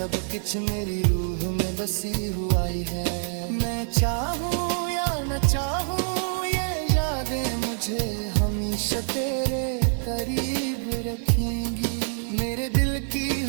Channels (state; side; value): silent; left; 59 dB below the other